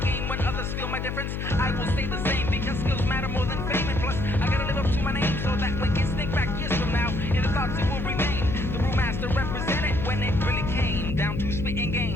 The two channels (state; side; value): noise; left; hum, 3 dB below the sound